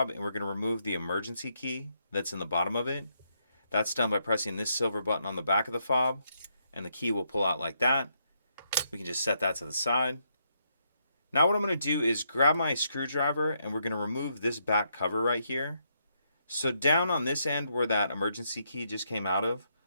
and we're going to remove the emergency key that's in the bottom of it. That's done by pressing this silver button on the back of the fob, and the key will pull out like that. We can just set that to the side. Now what I'm going to do is grab my screwdriver and we're going to remove this back cover right here. So down on this end where that emergency key just came out of,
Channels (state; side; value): inverted; both; correlation -0.78